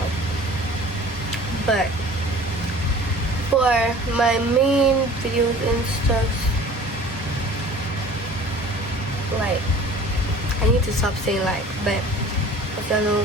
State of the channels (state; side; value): normal; both; correlation 0.46